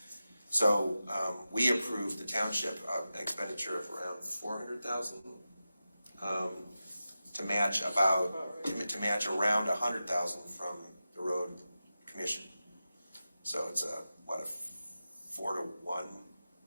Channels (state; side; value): inverted; both; correlation -0.93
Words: So we approved the township an expenditure of around $400,000 to match around $100,000 from the road commission. So it's a 4-to-1